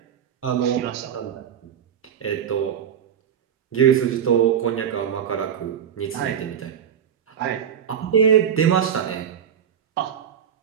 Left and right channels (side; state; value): left; quieter; 8.6 dB